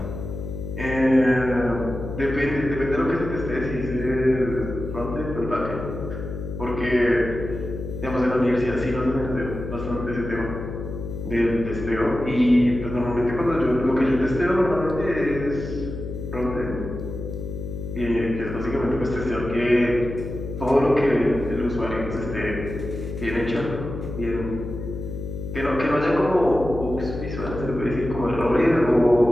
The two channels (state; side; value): noise; left; hum, 7 dB below the sound